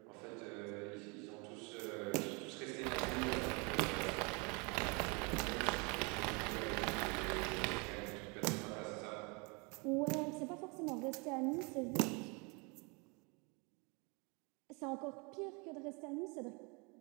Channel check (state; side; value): quieter; left; 30.8 dB